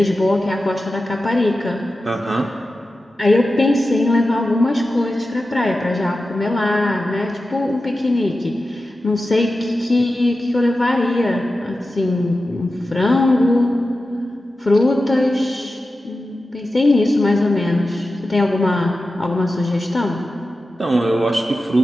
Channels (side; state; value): both; normal; correlation 0.93